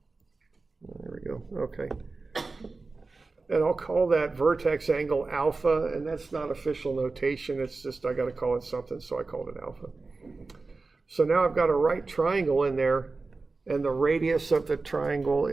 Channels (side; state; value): left; quieter; 3.8 dB